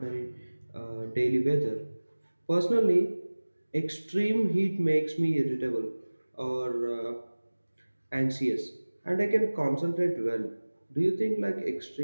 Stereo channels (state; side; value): inverted; both; correlation -1.00